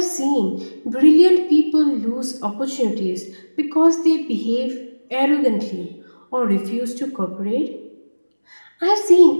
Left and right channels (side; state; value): both; inverted; correlation -1.00